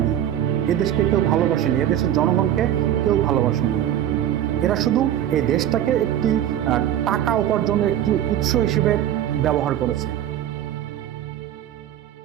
এদেশকে কেউ ভালোবাসেনি, এদেশের জনগণকে কেউ ভালোবাসেনি। এরা শুধু এই দেশটাকে একটি টাকা উপার্জনের একটি উৎস হিসেবে ব্যবহার করেছে।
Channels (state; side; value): quieter; left; 11.3 dB